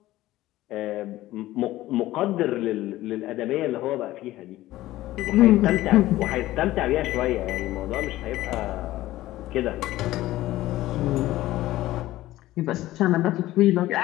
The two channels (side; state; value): right; quieter; 16.0 dB